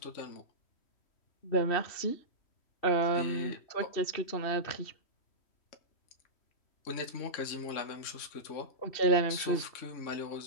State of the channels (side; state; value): right; late; 3.1 ms